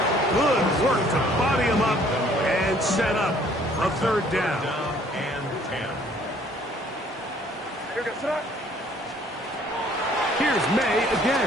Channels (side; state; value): both; normal; correlation 0.59